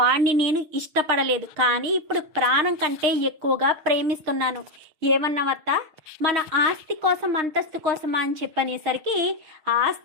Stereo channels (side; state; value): left; late; 6.5 ms